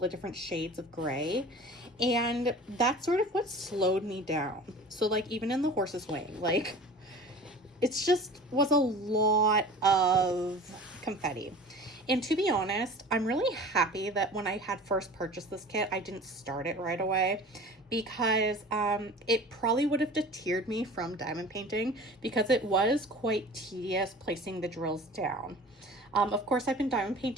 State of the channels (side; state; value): both; normal; correlation 0.40